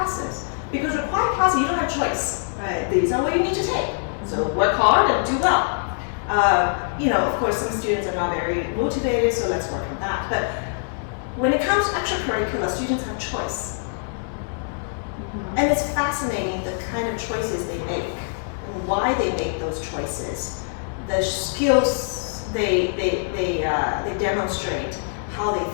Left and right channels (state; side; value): silent; right; 59 dB below the other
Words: Because required classes, you don't have choice. Right. These are what you need to take. So work hard and do well. Of course, some students are not very motivated, so let's work on that. But when it comes to extracurricular, students have choice. And it's fascinating the kind of choices they make and why they make those choices. The skills they demonstrate, how they